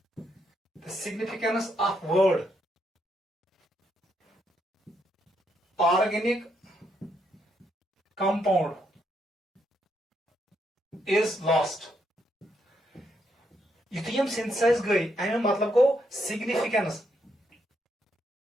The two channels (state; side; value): normal; both; correlation 0.77